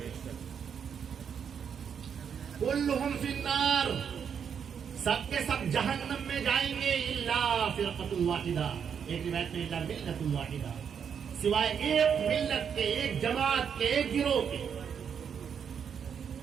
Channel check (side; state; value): left; quieter; 7.4 dB